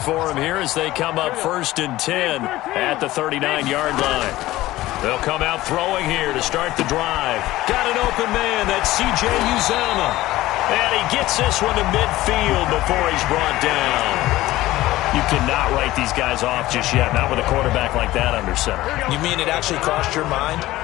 him here as they come up 1st and 10 at the 39-yard line. They'll come out throwing here to start the drive. Got an open man, that's C.J. Uzomah. And he gets this one to midfield before he's brought down. You cannot write these guys off just yet, not with a quarterback like that under center. You mean it actually crossed your mind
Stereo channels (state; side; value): quieter; right; 16.8 dB